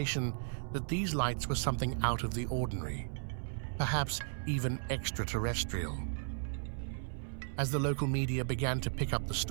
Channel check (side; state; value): left; silent; 54 dB below the other